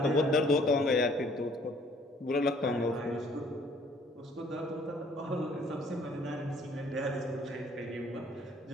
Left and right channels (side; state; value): both; normal; correlation 0.59